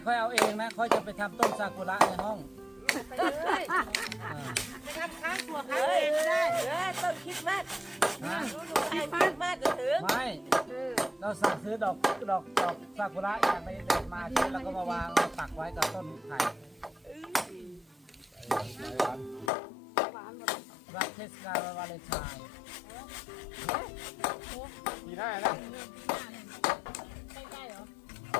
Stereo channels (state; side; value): drops out; right; at 19.5 s